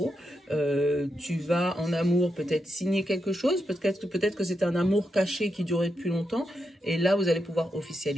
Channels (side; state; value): both; normal; correlation 0.84